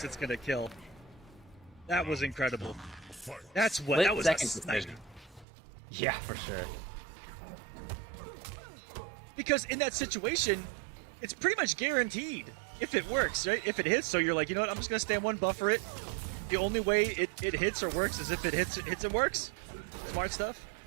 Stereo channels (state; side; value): drops out; left; at 5.5 s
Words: it's gonna kill. That was incredible. That was a snipe. Yeah, for sure. Because in that situation, it's pretty much guaranteed if it works, right? If it hits, so you're like, you know what, I'm just gonna stand 1, buffer it. The only way it hits or works is if it hits and works. Smart stuff.